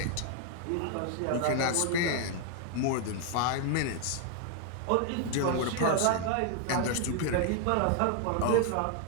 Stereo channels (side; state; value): both; different; correlation 0.00